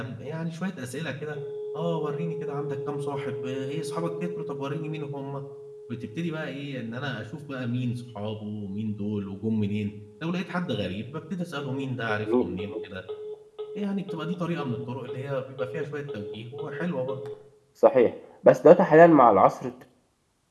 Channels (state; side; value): identical; both; correlation 1.00